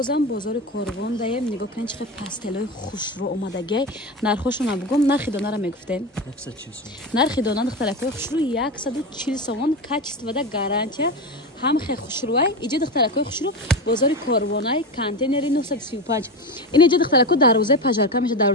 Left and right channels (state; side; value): normal; both; correlation 0.21